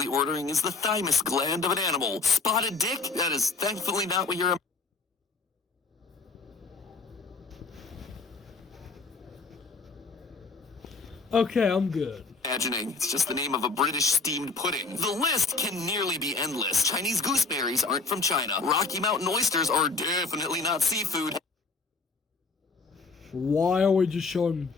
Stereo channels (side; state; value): right; quieter; 4.2 dB